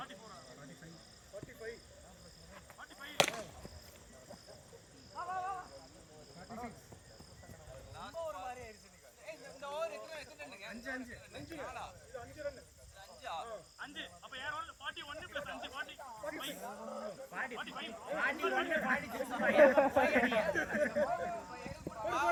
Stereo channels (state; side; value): identical; both; correlation 1.00